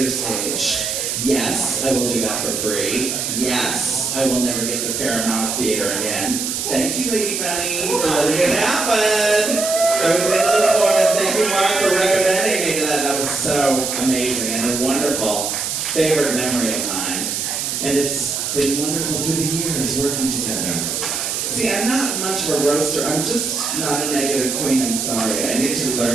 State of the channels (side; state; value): right; noise; hiss, 2 dB below the sound